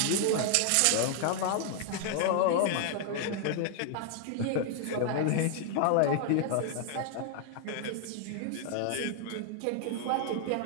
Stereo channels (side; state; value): both; different; correlation 0.00